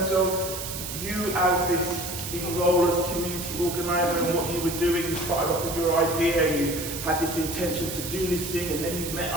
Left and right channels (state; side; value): noise; right; hiss, 7 dB below the sound